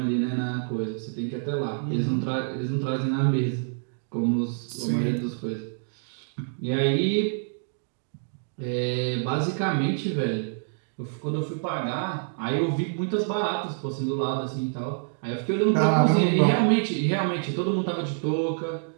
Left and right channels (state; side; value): silent; left; digital silence